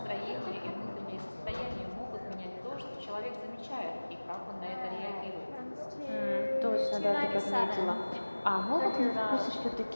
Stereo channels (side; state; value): both; inverted; correlation -1.00